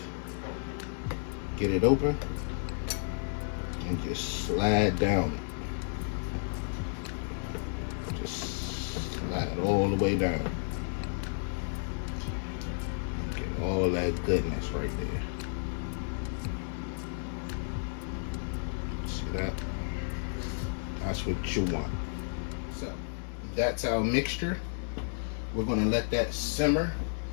Get it open. And just slide down it. Just slide all the way down. Get all that goodness right there. See that? That's what you want. So, that's our mixture. We're going to let that simmer.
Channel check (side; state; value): right; silent; digital silence